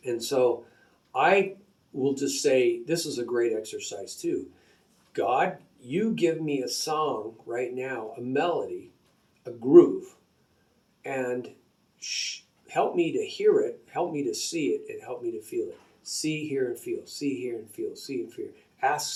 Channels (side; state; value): both; identical; correlation 1.00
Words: And so I will just say, this is a great exercise too. God, you give me a song right now, a melody, a groove, and help me to hear it, help me to see it, and help me to feel it. See, hear, and feel. See, hear, and feel. See, and feel.